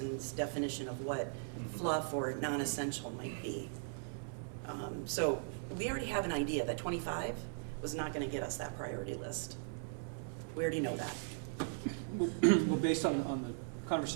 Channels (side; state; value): left; silent; 52 dB below the other